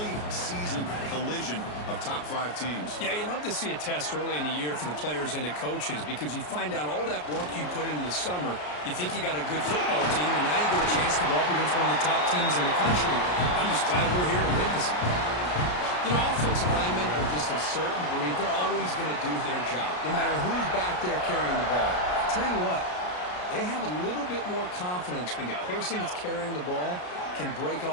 season collision of top 5 teams. Yeah, you love to see a test early in the year for the players and the coaches because you find out all that work you put in the summer. You think you got a good football team, and now you get a chance to go up against one of the top teams in the country. I'm just glad we're here to witness it. You know, offensive linemen are just a certain breed. They're always going to do their job, no matter who's back there carrying the ball. I'll tell you what, they have a little bit more confidence when the person that's carrying the ball can break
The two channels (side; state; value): right; late; 33 ms